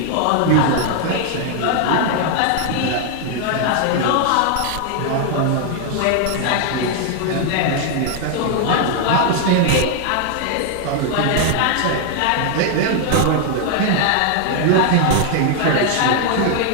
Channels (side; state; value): both; different; correlation 0.00